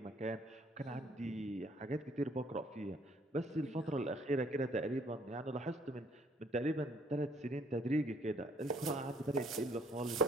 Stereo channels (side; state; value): both; normal; correlation 0.62